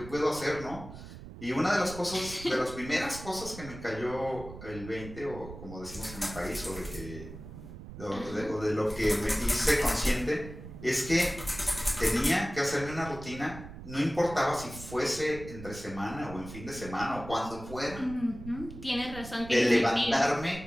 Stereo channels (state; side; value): noise; right; rumble, 13 dB below the sound